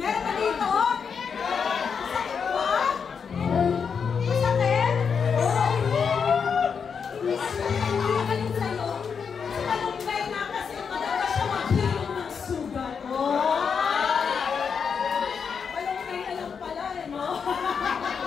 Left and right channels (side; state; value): right; quieter; 6.3 dB